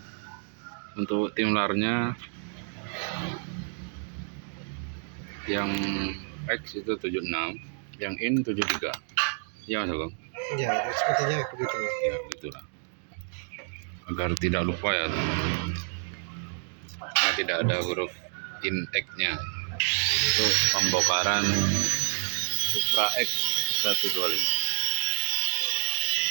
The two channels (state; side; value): silent; left; 58 dB below the other